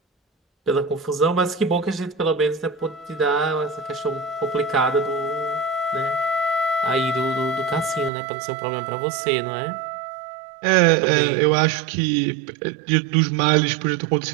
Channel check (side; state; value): left; drops out; at 8.1 s